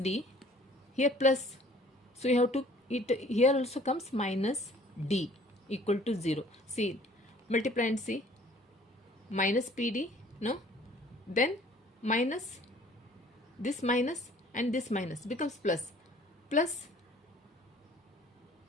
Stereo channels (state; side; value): normal; both; correlation 0.54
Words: here plus, so you have to, it here also comes minus d equal to 0, see, multiply and see, minus pd, no, then minus, this minus and this minus becomes plus,